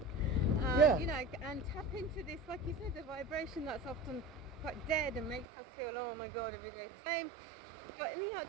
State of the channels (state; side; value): drops out; left; at 5.5 s